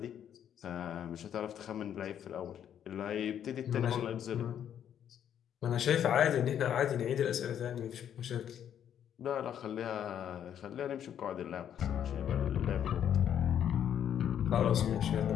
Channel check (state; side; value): quieter; right; 9.5 dB